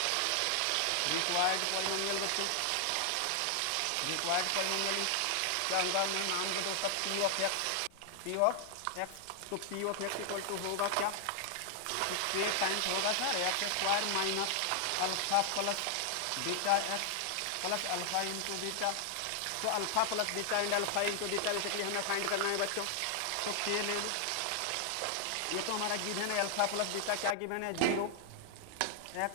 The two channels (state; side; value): different; both; correlation 0.00